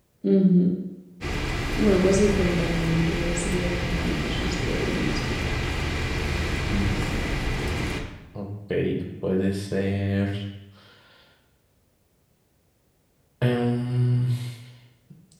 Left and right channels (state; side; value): identical; both; correlation 1.00